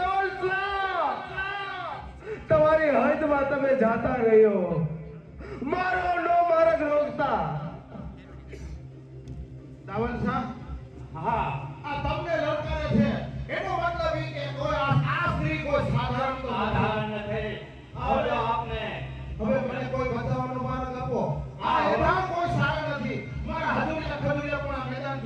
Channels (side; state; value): both; identical; correlation 1.00